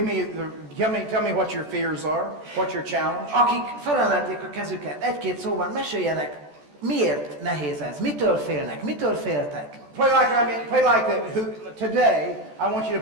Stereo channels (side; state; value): left; late; 14 ms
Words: tell me what your fears are, what's your challenge. Akik felemelték a kezüket, egy-két szóban meséljenek, miért nehéz ez, mitől félnek, mitől féltek? Play like today, I want you